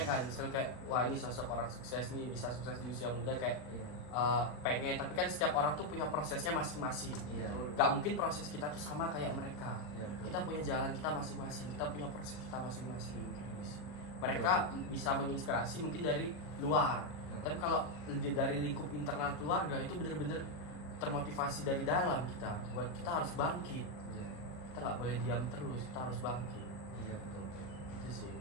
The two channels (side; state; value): right; late; 40 ms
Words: kan. Misal kayak wah ini sosok orang sukses nih, bisa sukses di usia muda, kayak Iya. pengen. Tapi kan setiap orang tuh punya prosesnya masing-masing. Iya. Gak mungkin proses kita tuh sama kayak mereka. Iya, betul. Kita punya jalan kita masing-masing, kita punya proses kita masing-masing. Mereka bisa menginspirasi mungkin dari luar, Ya. tapi kalau dari lingkup internal keluarga itu bener-bener termotivasi dari dalam kita, buat kita harus bangkit. Iya. Kita nggak boleh diam terus, kita harus bangkit. Iya, betul. Itu sih.